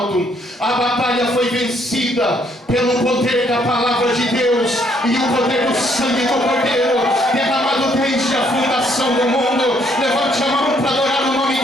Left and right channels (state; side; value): normal; both; correlation 0.68